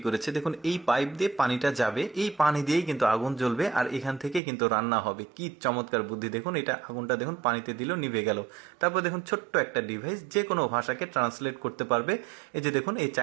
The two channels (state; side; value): drops out; left; at 4.4 s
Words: করেছে দেখুন। এই পাইপ দিয়ে পানিটা যাবে, এই পানি দিয়েই কিন্তু আগুন জ্বলবে আর এখান থেকে কিন্তু রান্না হবে। কি চমৎকার বুদ্ধি দেখুন। এটা আগুনটা দেখুন পানিতে দিল, নিভে গেল। তারপর দেখুন ছোট্ট একটা ডিভাইস যে কোনো ভাষাকে ট্রান্সলেট করতে পারবে। এই যে দেখুন, এই